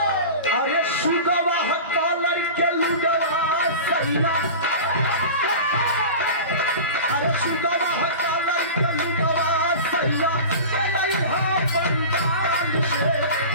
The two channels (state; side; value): inverted; both; correlation -0.32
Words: अरे सुगवा कॉलर के लुगवा सैया अरे सुगवा कॉलर के लुगवा सैया लइहा पंडाल से